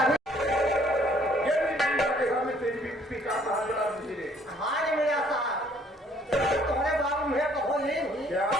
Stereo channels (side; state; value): both; normal; correlation 0.61